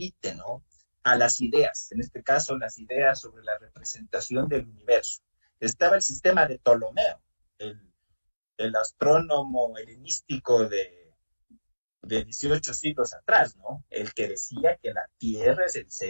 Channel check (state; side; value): inverted; both; correlation -1.00